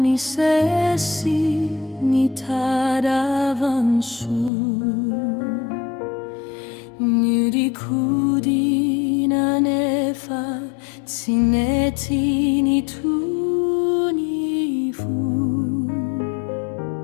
ni sesi ni tadavansu Nirikudi na nefa tsineti ni tunifu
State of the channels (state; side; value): drops out; right; at 4.5 s